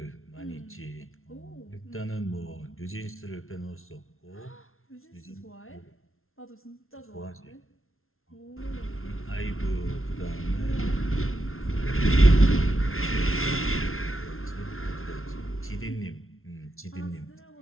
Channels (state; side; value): late; right; 0.61 ms